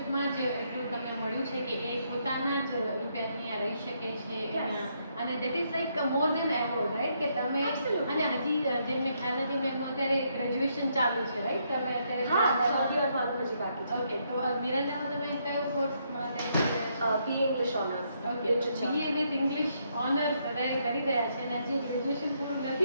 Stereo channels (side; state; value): both; inverted; correlation -0.75